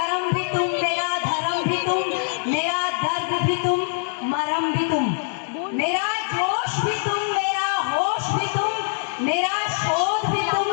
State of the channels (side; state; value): right; silent; digital silence